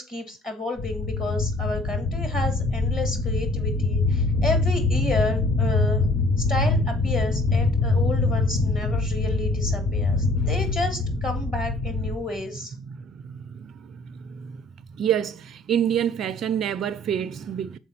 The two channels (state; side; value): normal; both; correlation 0.54